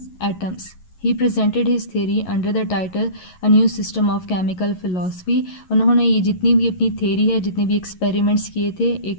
atoms. He presented his theory under the title a new system of chemical philosophy. उन्होंने ये जितनी भी अपनी थेरी है, जितने भी एक्सपेरिमेंट्स किए थे,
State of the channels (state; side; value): late; right; 11 ms